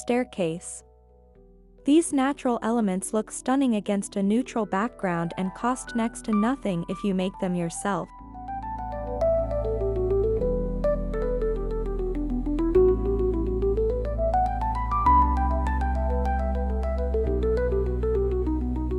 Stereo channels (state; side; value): identical; both; correlation 1.00